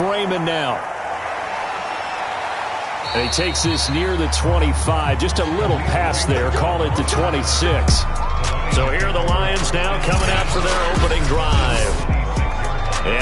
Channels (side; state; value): both; identical; correlation 1.00